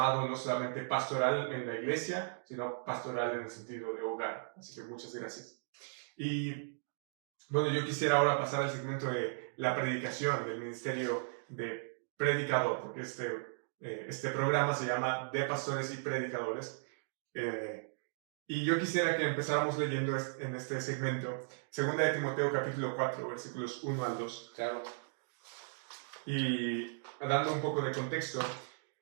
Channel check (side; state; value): left; silent; digital silence